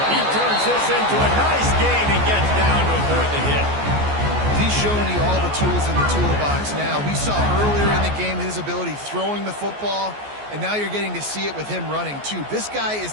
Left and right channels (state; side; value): late; left; 14 ms